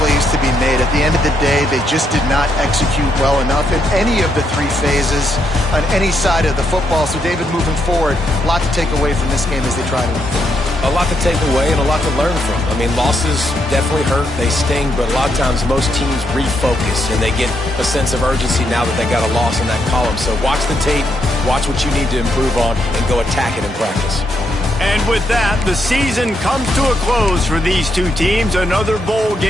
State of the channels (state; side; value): normal; both; correlation 0.78